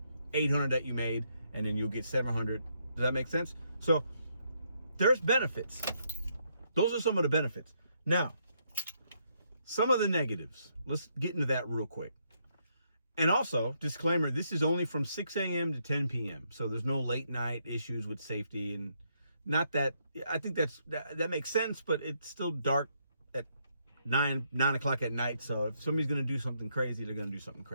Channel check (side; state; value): both; inverted; correlation -0.74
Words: 800 that you made, and then you'll get 700. Does that make sense? So there's benefits. Those are some of the benefits. Now, some of the negatives. Let's get into that real quick. And also, disclaimer, this is only from 6 a.m. to 10 p.m. So there's no late night issues with safety, and not that, I think that makes sense, but it's still dark at 9 o'clock at night. So if somebody's going to do something crazy, they're going to do something